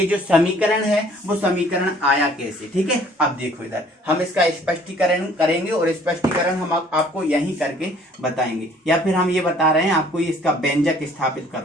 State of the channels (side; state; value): both; normal; correlation 0.57